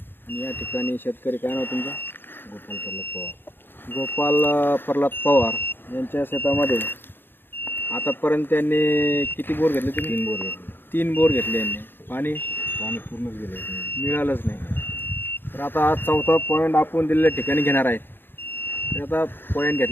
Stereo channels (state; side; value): late; right; 0.10 ms